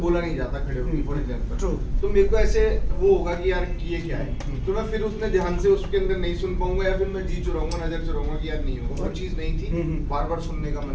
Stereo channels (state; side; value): identical; both; correlation 1.00